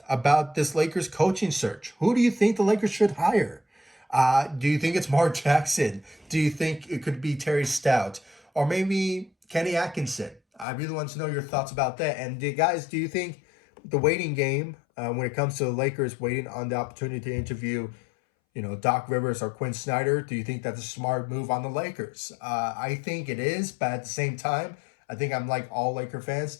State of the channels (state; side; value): drops out; right; at 10.7 s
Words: about this Lakers coaching search. Who do you think the Lakers should hire? Do you think it's Mark Jackson? Do you think it could be Terry Stout? Or maybe Kenny Atkinson? I really want to know your thoughts about that. And guys, do you think the waiting game, when it comes to the Lakers waiting on the opportunity to interview, Doc Rivers or Quinn Snyder, do you think that's a smart move on the Lakers? I think it is, but at the same time, I think I'm like all Laker fans